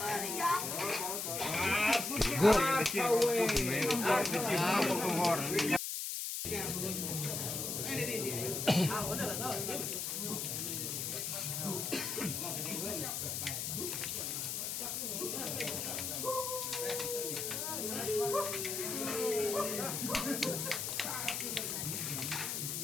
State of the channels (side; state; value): left; noise; hiss, 2 dB below the sound